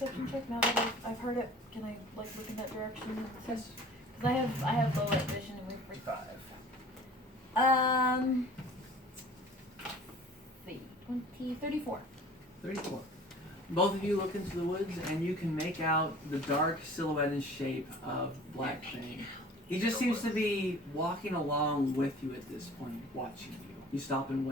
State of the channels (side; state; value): both; normal; correlation 0.46